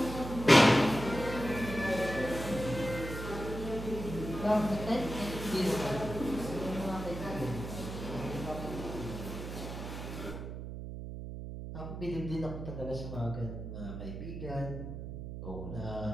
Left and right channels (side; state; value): right; noise; hum, 7 dB below the sound